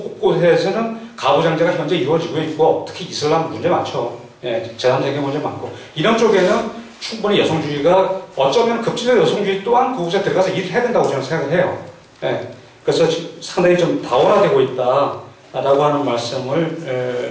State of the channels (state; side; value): identical; both; correlation 1.00